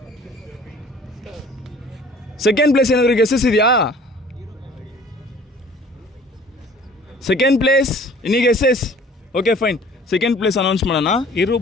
ಸೆಕೆಂಡ್ ಪ್ಲೇಸ್ ಏನಾದರೂ ಗೆಸ್ಸಸ್ ಇದೆಯಾ? Second place any guesses? Okay fine, second place announce ಮಾಡೋಣ.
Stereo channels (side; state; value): both; normal; correlation 0.50